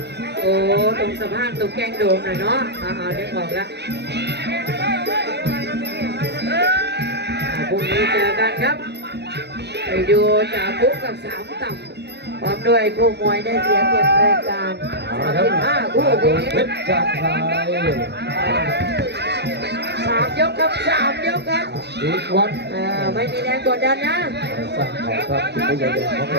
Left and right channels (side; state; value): left; late; 0.49 ms